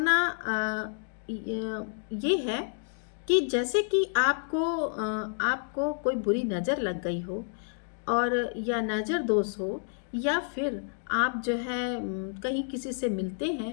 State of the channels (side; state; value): right; silent; 58 dB below the other